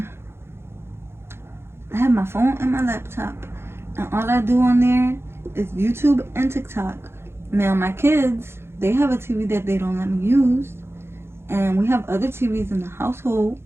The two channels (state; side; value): late; left; 0.12 ms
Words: I have my phone and my laptop, and all I do on there is YouTube and TikTok. Now my kids, they have a TV that they don't let me use, and we have other TVs in the household,